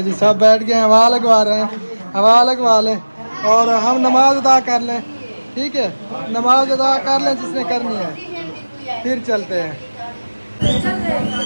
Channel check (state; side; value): inverted; both; correlation -1.00